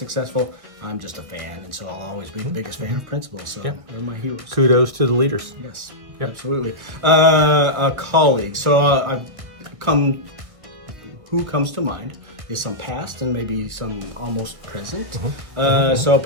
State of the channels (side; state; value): left; late; 1.6 ms